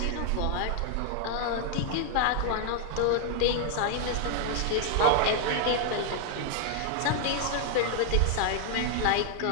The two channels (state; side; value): different; both; correlation 0.00